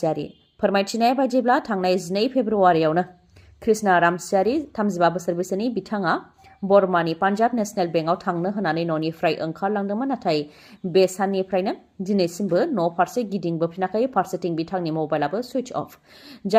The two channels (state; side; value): identical; both; correlation 1.00